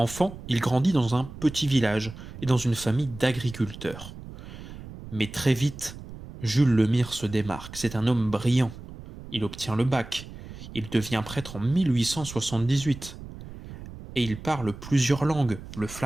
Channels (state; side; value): noise; right; rumble, 14 dB below the sound